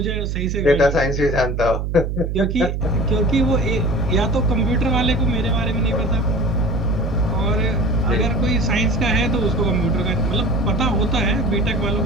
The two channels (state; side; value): noise; right; hum, 2 dB below the sound